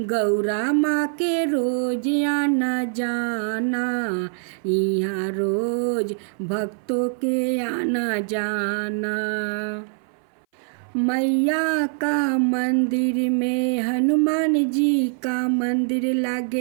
गौरा माँ के रोज आना जाना। यहाँ रोज भक्तों के आना जाना। मैया का मंदिर में हनुमान जी का मंदिर,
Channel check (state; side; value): silent; left; 59 dB below the other